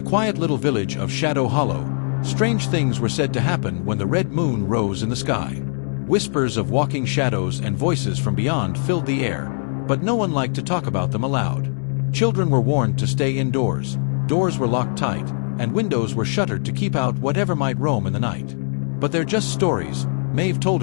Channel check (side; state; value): right; silent; digital silence